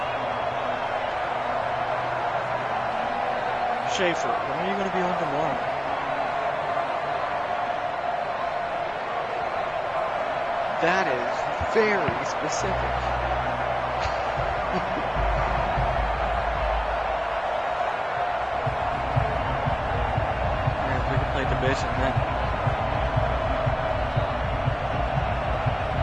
Schaefer, when are you going to be home tomorrow? That is very specific. We can play division then.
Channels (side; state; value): both; identical; correlation 1.00